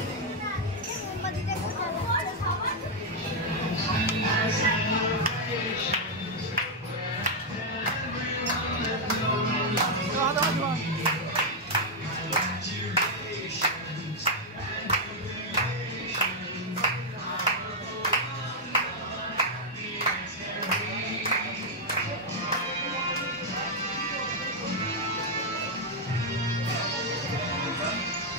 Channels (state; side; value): normal; both; correlation -0.01